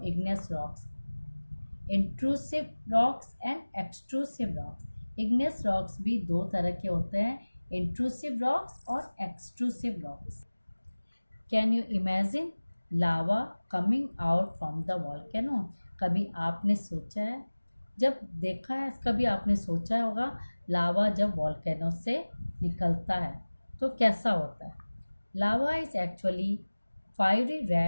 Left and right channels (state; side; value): inverted; both; correlation -1.00